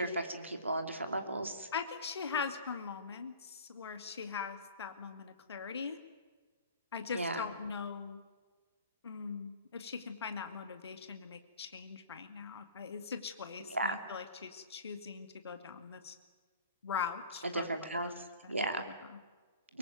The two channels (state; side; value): inverted; both; correlation -0.43